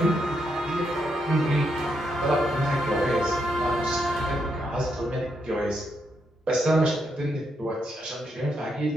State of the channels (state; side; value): normal; both; correlation 0.79